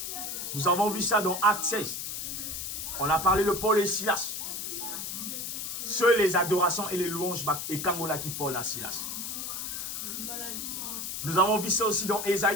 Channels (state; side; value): noise; left; hiss, 5 dB below the sound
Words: Nous avons vu ça dans Acte 16. On a parlé de Paul et Silas. Seules les adorations et les louanges et Kangola qui Paul et Silas. Nous avons vu ça aussi dans